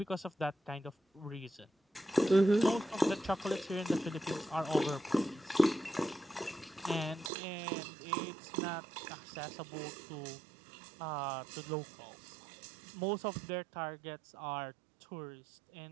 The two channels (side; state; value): left; drops out; at 7.3 s